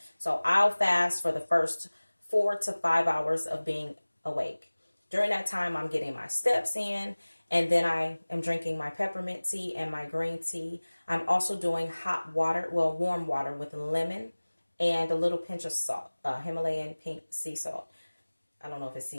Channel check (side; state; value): both; inverted; correlation -1.00